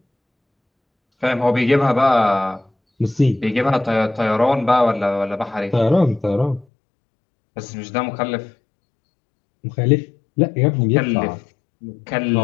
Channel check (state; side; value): drops out; right; at 6.7 s